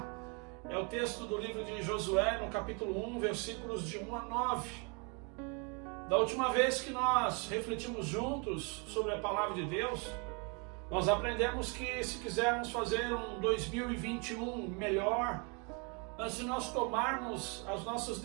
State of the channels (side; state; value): left; quieter; 33.7 dB